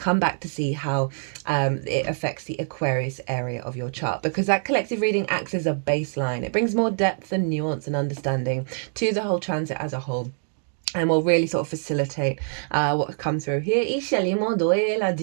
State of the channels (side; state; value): left; silent; digital silence